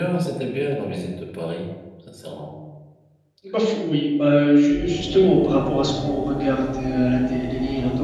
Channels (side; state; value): both; identical; correlation 1.00